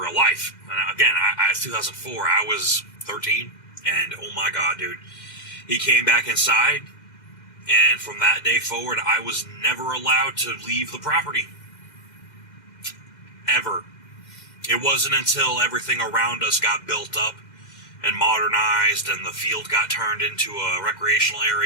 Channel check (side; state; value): right; late; 2.1 ms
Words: life. And again, I 2004, I was 13, and oh my god, dude. He came back inside, and from that day forward, I was never allowed to leave the property. Ever. It wasn't until everything around us got built up and modernized, and the field got turned into a recreational